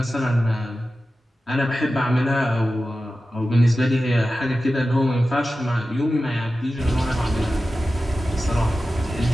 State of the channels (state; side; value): normal; both; correlation 0.94